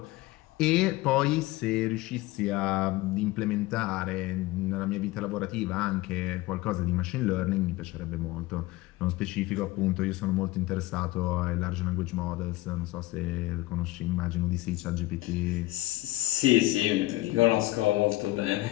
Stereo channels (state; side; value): quieter; right; 18.7 dB